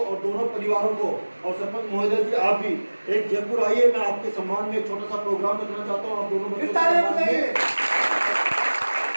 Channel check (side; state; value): both; inverted; correlation -1.00